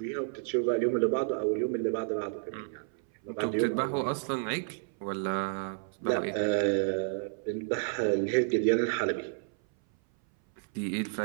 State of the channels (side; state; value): left; silent; 57 dB below the other